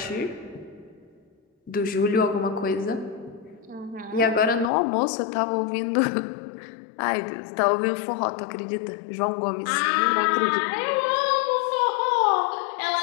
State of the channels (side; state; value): right; drops out; at 4.7 s